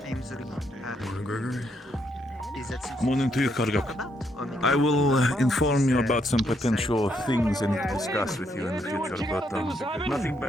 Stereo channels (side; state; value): both; normal; correlation 0.75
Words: I'm sorry. Morning, Gregory. Is that something Morning to you, Kargak. I will inform you about some potential things I need to discuss with you in the future, but nothing